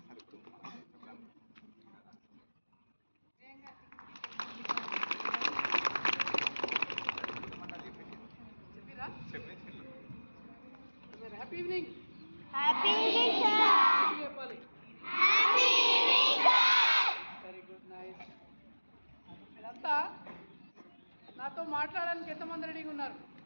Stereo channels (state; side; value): inverted; both; correlation -1.00